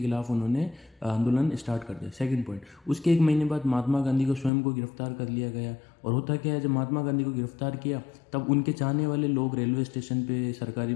खिलाफ उन्होंने आंदोलन स्टार्ट कर दिया। सेकंड पॉइंट, उसके एक महीने बाद महात्मा गांधी को स्वयं को गिरफ्तार कर लिया गया। और होता क्या है, जब महात्मा गांधी को गिरफ्तार किया तब उनके चाहने वाले लोग रेलवे स्टेशन पे, सरकारी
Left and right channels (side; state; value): right; drops out; at 4.5 s